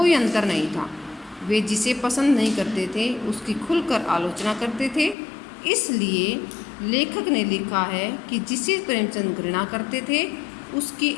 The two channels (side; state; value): right; drops out; at 5.2 s